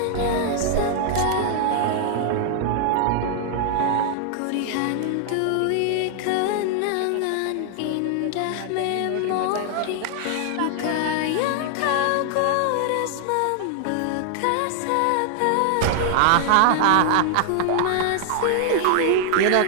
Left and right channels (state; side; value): different; both; correlation 0.00